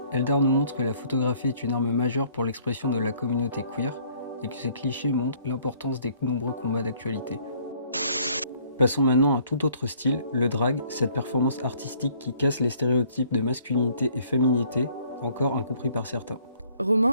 Eldar nous montre que la photographie est une arme majeure pour l'expression de la communauté queer et que ces clichés montrent l'importance des nombreux combats d'actualité. Passons maintenant à un tout autre style, le drag, cette performance artistique qui casse les stéréotypes de masculinité et féminité, encore incompris par certains.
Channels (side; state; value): both; inverted; correlation -0.60